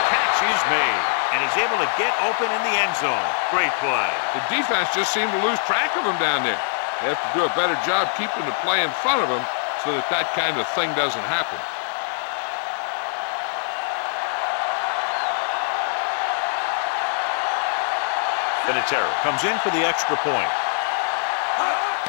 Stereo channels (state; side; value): silent; right; digital silence